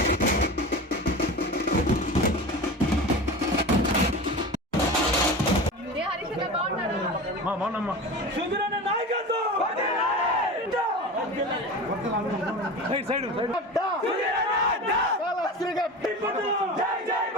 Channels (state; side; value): normal; both; correlation 0.30